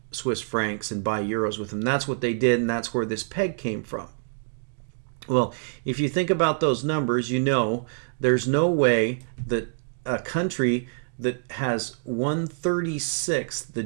Swiss francs and buy euros with them. That's what they did, and that's where this peg came from. Well, if you think about those numbers, you know there's no way that a country that has 1/36 the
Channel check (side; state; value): left; silent; digital silence